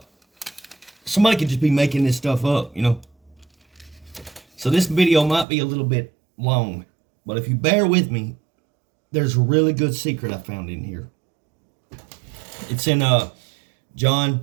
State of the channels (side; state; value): left; drops out; at 5.5 s